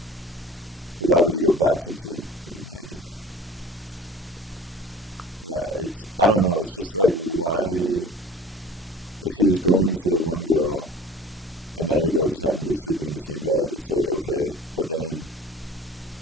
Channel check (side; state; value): both; normal; correlation 0.43